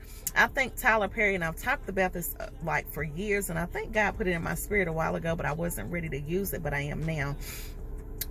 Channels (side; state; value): both; identical; correlation 1.00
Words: I think Tyler Perry, and I've talked about this like for years, and I think God put it in my spirit a while ago, but I wasn't ready to use it, but I am now.